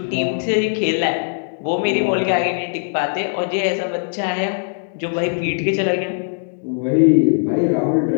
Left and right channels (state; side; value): silent; right; 66 dB below the other